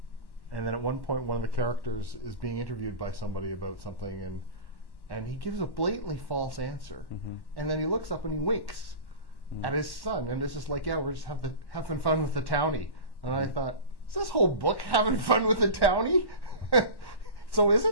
And then at one point, one of the characters is being interviewed by somebody about something, and he gives a blatantly false answer, and then he looks up and he winks at his son, and it's just like, yeah, we're just having fun with the townie. And I thought, is this whole book having fun with the townie? So is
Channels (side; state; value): right; late; 1.1 ms